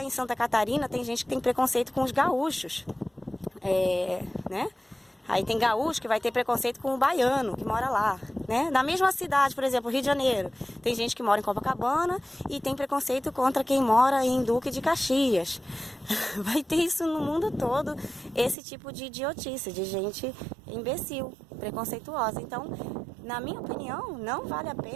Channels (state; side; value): drops out; left; at 18.6 s